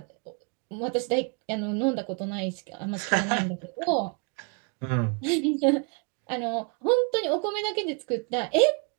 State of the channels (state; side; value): quieter; left; 34.8 dB